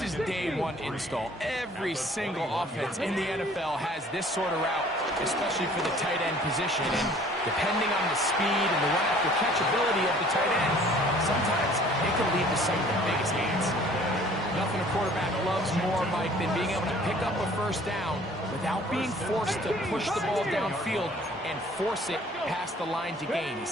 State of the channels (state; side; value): normal; both; correlation 0.53